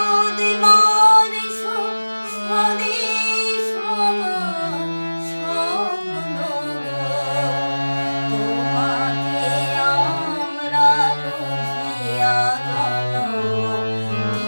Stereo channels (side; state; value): both; inverted; correlation -1.00